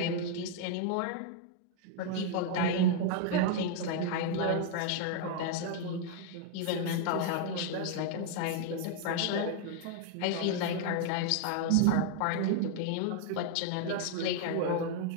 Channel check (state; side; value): different; both; correlation 0.00